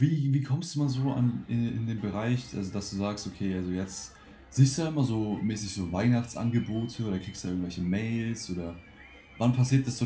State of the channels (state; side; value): identical; both; correlation 1.00